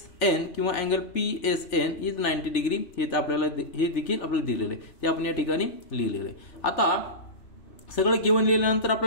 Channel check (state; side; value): late; right; 3.4 ms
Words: किंवा अँगल PSN इज 90 डिग्री हे आपल्याला हे देखील आपल्याला दिलेलं आहे. ते आपण या ठिकाणी लिहिलेलं आहे. आता सगळं गिवन लिहिल्यानंतर